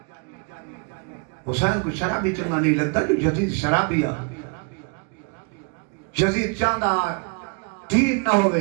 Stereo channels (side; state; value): left; quieter; 37.0 dB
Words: حسین کو شرابی چنگا نہیں لگتا جو یزید شرابی آ یزید چاندہ دین نہ